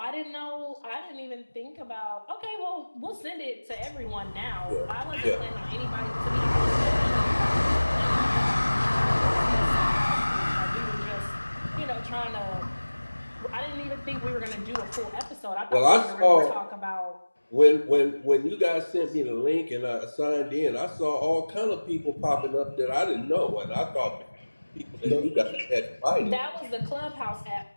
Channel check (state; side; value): inverted; both; correlation -1.00